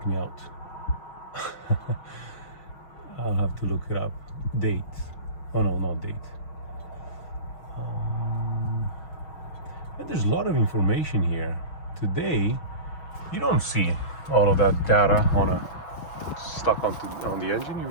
me out. I'll have to look it up. Date. Oh no, not date. And there's a lot of information here. Today, you don't see all of that data stuck on the engine. You'll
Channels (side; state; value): right; late; 6.2 ms